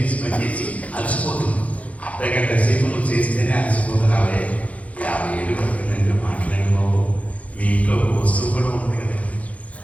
అలసిపోతుంది. అర్ధగంట సేపు నువ్వు చేస్తేనే అలసిపోతున్నావే. 50 ఏళ్ళు పడుతుందంటే మాట్లాడిపోవు. మీ ఇంట్లో వస్తువు కూడా ఉంది కదా,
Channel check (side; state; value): right; late; 0.067 ms